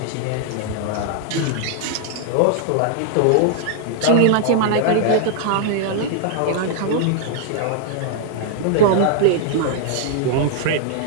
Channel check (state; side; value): different; both; correlation -0.01